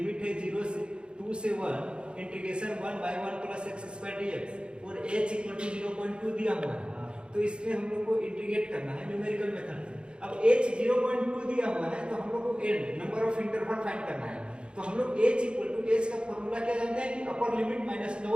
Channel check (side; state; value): left; late; 0.054 ms